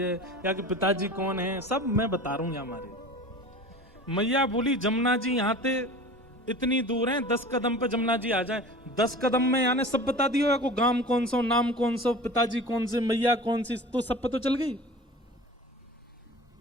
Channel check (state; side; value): normal; both; correlation 0.38